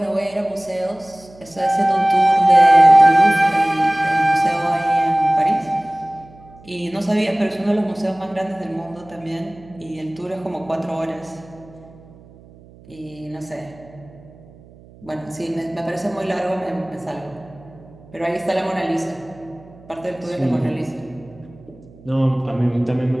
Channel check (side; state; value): right; noise; hum, 23 dB below the sound